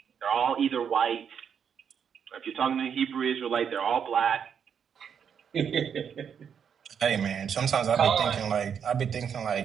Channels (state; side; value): quieter; left; 7.6 dB